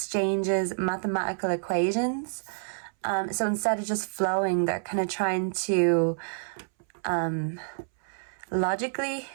mathematical equations. So instead of just flowing, they're kind of trying to logically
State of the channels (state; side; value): silent; left; 59 dB below the other